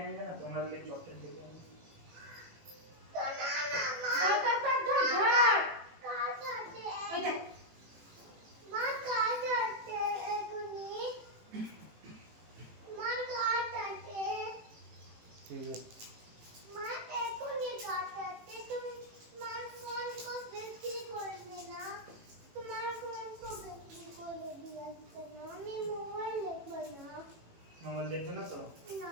आएंगे ना, তোমরা ले चॉकलेट लेके आएंगे। ठीक है, मोबाइल देखबे ना तो?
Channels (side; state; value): left; late; 18 ms